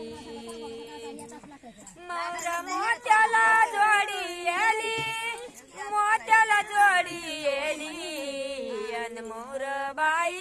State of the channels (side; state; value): both; identical; correlation 1.00